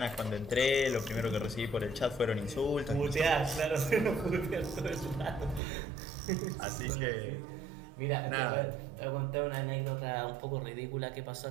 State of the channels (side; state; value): left; drops out; at 5.6 s